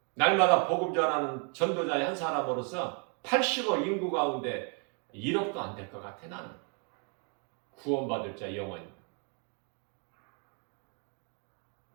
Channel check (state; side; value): quieter; left; 37.3 dB